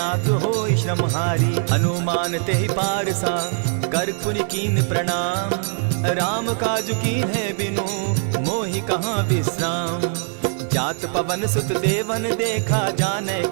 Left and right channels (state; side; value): silent; left; 64 dB below the other